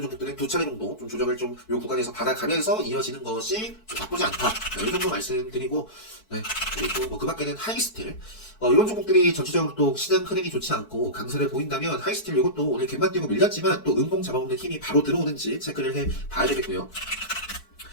종목들은 두 차례 정도 좀 조정을 좀 요 구간에서 받아가면서 이어지는 것이 좀 나쁘지 않다. 네, 이 정도 말씀드리고, 네, 그리고 그 밖에는 하이스틸, 이런 종목들이 전체적으로 또 시장 흐름이 좋지 않고 강세를 보인다면 하이스틸 이것도 오늘 갭만 띄고 밀렸지만 또 음봉 잡아먹는 힘이 바로 들어오는지 체크를 해 봐야 되겠고요.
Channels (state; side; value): late; right; 4.6 ms